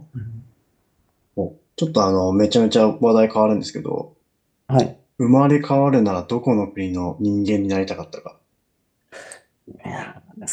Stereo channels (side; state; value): both; identical; correlation 1.00